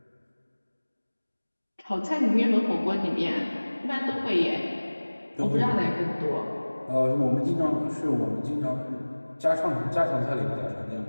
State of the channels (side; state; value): both; inverted; correlation -1.00